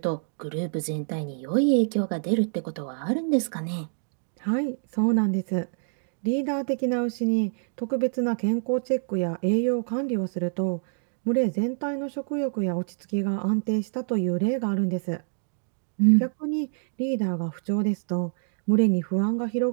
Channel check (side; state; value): left; silent; digital silence